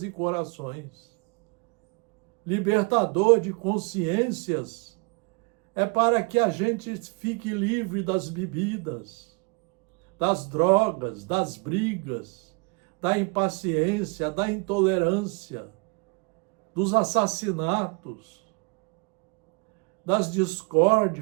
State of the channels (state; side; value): quieter; left; 31.8 dB